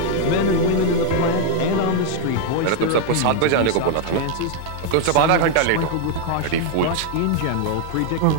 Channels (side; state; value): both; different; correlation 0.00